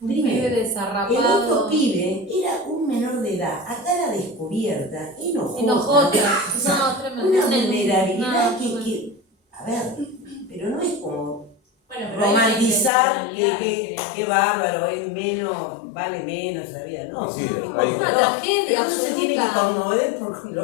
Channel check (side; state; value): right; drops out; at 12.9 s